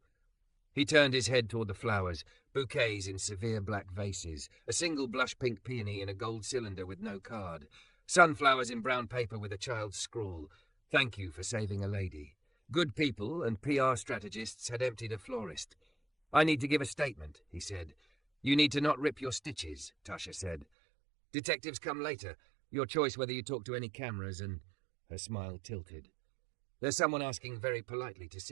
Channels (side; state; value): left; drops out; at 20.7 s